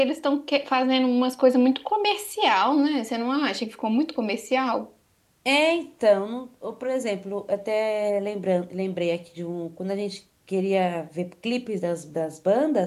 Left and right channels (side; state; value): both; identical; correlation 1.00